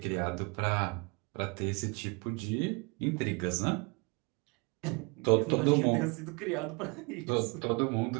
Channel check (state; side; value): quieter; left; 31.2 dB